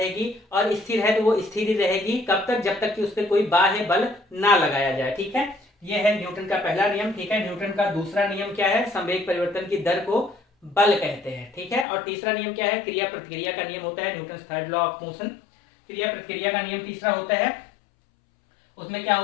और स्थिर है तो वो स्थिर ही रहेगी, कब तक, जब तक कि उस पर कोई बाह्य बल ना लगाया जाए, ठीक है। ये है न्यूटन का पहला नियम, ठीक है। न्यूटन का दूसरा नियम क्या है, संवेग परिवर्तन की दर को बल कहते हैं, ठीक है। और तीसरा नियम क्या है, क्रिया प्रतिक्रिया का नियम होता है, Newton third law of motion. क्रिया प्रतिक्रिया का नियम तीसरा होता है, उसमें क्या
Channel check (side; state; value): right; drops out; at 11.9 s